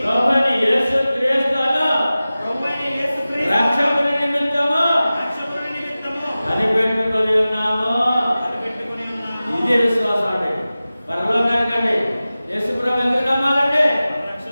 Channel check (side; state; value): both; inverted; correlation -0.96